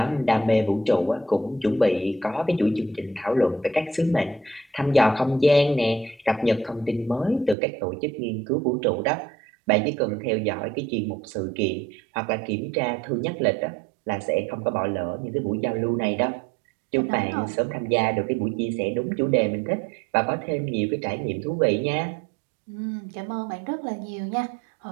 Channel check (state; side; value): drops out; left; at 7.6 s